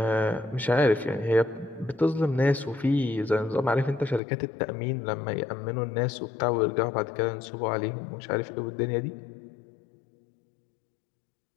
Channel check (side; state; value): right; drops out; at 4.2 s